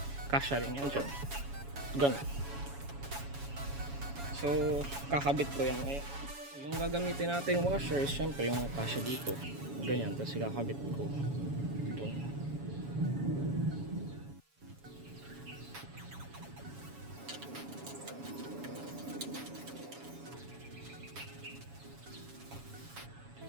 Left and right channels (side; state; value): left; late; 7.2 ms